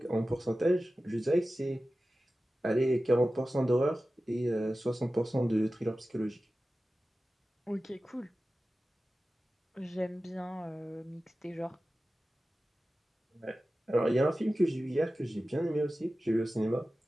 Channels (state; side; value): normal; both; correlation 0.95